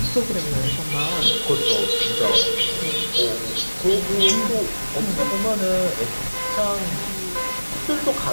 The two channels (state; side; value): inverted; both; correlation -1.00